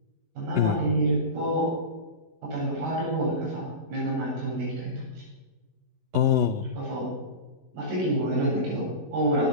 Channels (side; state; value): left; late; 11 ms